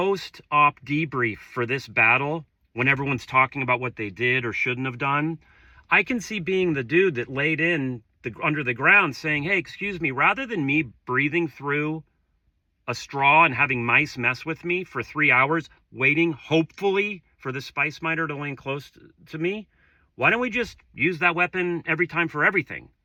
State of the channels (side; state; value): both; identical; correlation 1.00